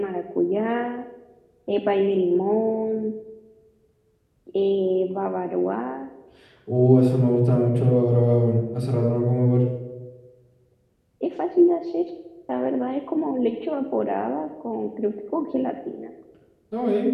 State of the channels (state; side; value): identical; both; correlation 1.00